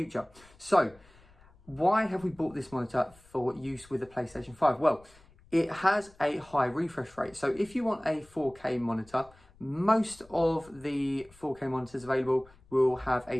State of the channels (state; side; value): noise; left; rumble, 27 dB below the sound